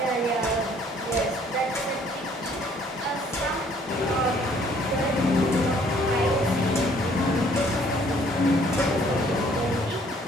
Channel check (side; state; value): both; normal; correlation 0.61